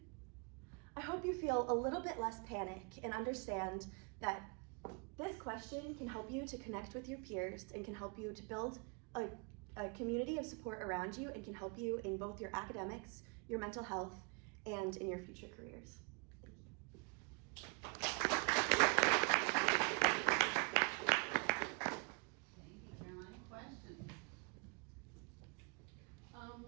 I hope you feel a little bit less panic and understand that this question can help you to connect with your peers and can help you to build a community of support around you and can help you in both your academics, your mental health, and in your future careers. Thank you, Caroline. Questions?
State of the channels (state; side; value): quieter; left; 34.9 dB